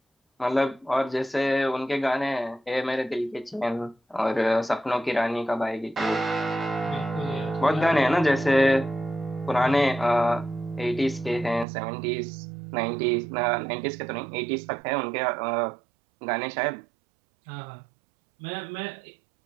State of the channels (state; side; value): drops out; left; at 11.7 s